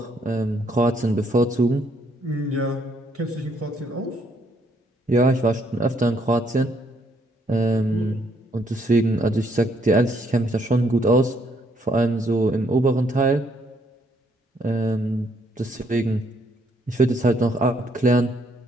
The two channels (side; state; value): both; normal; correlation 0.70